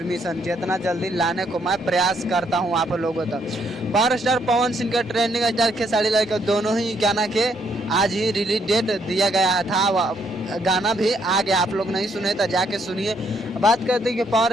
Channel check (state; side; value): normal; both; correlation 0.72